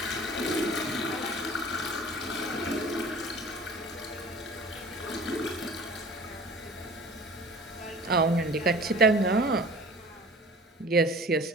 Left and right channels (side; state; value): both; normal; correlation 0.44